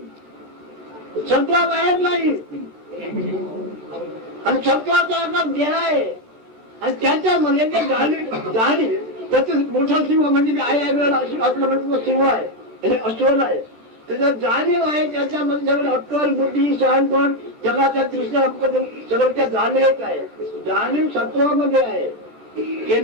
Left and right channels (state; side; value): late; left; 14 ms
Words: सत्वा बाहेर नाही आणि सत्वाचा अर्थ देह आहे आणि त्याच्यामध्ये ते जाणीव त्याचं मोठा सिंह म्हणजे मी आहे असलं म्हणजे सिंह आहे अस्वल आहे त्याच्यात जाणीव आहे त्याच्यामध्ये सगळं अक्कल बुद्धी शहाणपण जगाच्या दृष्टीने सगळं त्या जाणीवेत आहे. जाणीव सत्वामध्ये आहे.